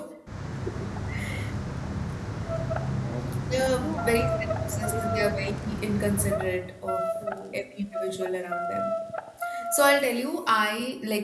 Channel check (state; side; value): identical; both; correlation 1.00